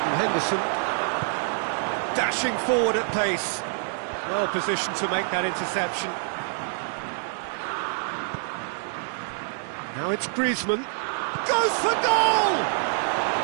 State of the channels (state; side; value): silent; left; 61 dB below the other